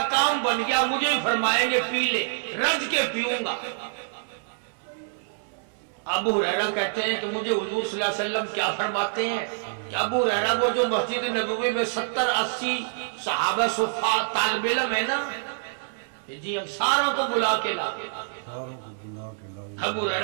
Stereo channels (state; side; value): silent; left; 61 dB below the other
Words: کام بن گیا، مجھے ہی فرمائیں گے پی لے، رج کے پیوں گا۔ ابو ہریرہ کہتے ہیں کہ مجھے حضور صلی اللہ علیہ وسلم کیا فرماتے ہیں کہ ابو ہریرہ وہ جو مسجد نبوی میں 70-80 صحابہ صفا طالب علم ہے نا، جی ہم ساروں کو بلا کے لا۔ ابو